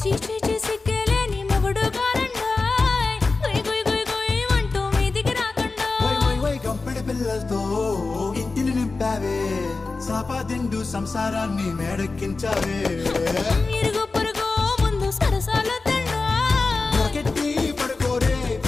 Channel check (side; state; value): right; quieter; 3.8 dB